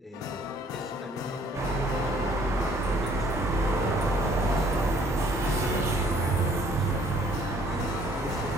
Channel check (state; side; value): normal; both; correlation 0.60